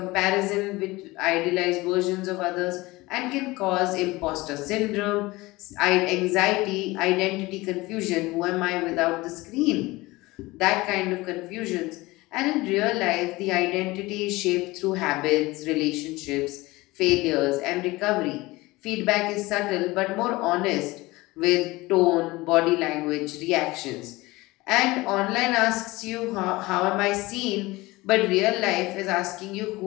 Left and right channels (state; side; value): quieter; right; 20.9 dB